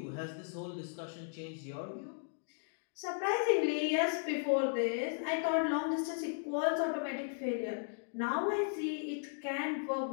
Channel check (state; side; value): silent; right; digital silence